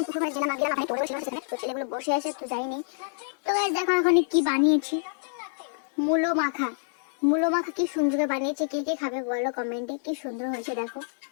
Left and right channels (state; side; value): silent; right; digital silence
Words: পুকুর পাড়ে গেলাম, ওখানে টোটো বসে আছে, তো ছেলেগুলো বসে আছে, তো যাইনি। তো গাইস দেখো এখন কি বানিয়েছি, মূলো মাখা কি সুন্দর বানিয়েছে, কে কে খাবে বলো কমেন্টে, কি সুন্দর হয়েছে দেখো।